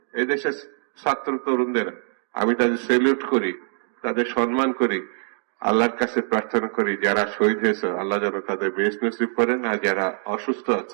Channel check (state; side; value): silent; left; digital silence